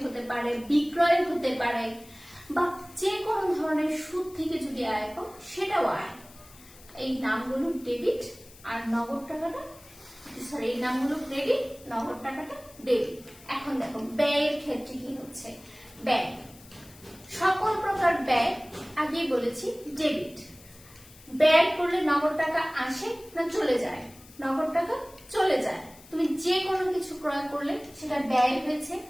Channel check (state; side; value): noise; left; hiss, 22 dB below the sound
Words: হতে পারে, বিক্রয় হতে পারে, বা যে কোনো ধরনের সুদ থেকে যদি আয় পাও সেটাও আয়। এই নামগুলো ডেবিট আর নগদ টাকাটা সরি এই নামগুলো ক্রেডিট, নগদ টাকাটা ডেবিট। এখন দেখো ব্যয়ের ক্ষেত্রে কি হচ্ছে, ব্যয় সকল প্রকার ব্যয় আগেই বলেছি ডেবিট। ব্যয় করলে নগদ টাকা আসে না চলে যায়? নগদ টাকা চলে যায়। তুমি যে কোনো কিছু ক্রয় করলে সেটা ব্যয় হয়েছে,